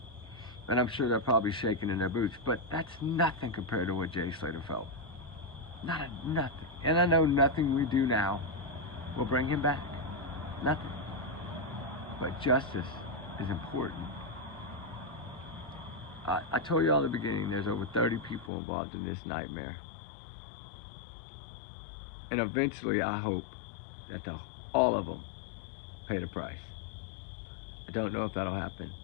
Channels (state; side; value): drops out; right; at 18.5 s